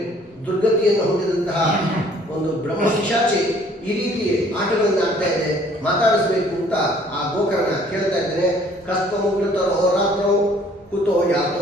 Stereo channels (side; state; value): both; normal; correlation 0.58